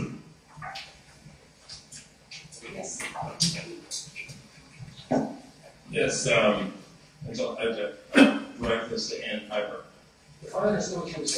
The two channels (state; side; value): identical; both; correlation 1.00